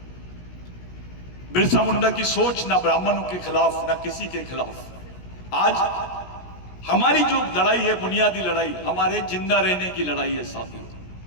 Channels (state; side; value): late; right; 17 ms